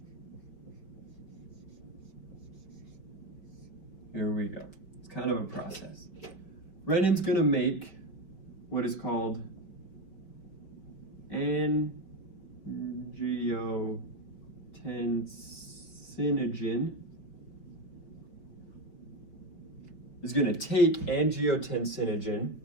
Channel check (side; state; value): right; late; 5.2 ms